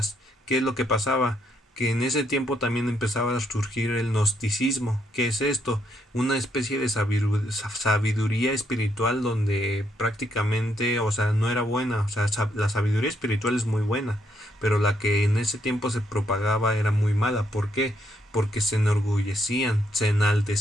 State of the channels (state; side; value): normal; both; correlation 0.75